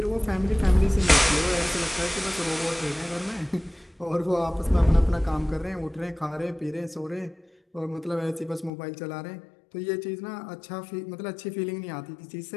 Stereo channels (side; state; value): right; drops out; at 8.7 s